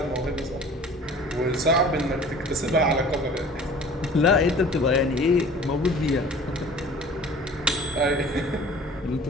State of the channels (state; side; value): normal; both; correlation 0.45